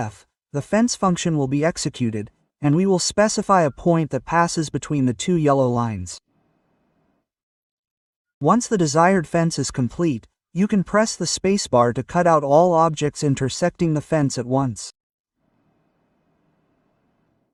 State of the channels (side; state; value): both; identical; correlation 1.00